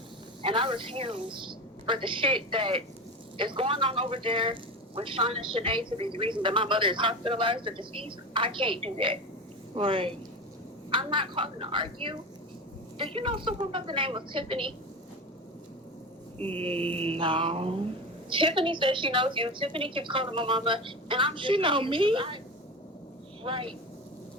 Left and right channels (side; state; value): both; normal; correlation 0.24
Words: and I refuse for the shit that is going on over there with Sean and SCHENEE to be the reason that my mother is hospitalized or deceased. I can't do that. Right. I'm not calling to argue. Do you know someone by the name of Tiffany? No. Tiffany says she knows you. Tiffany keeps calling my mama, and I'm just... She know me? Right.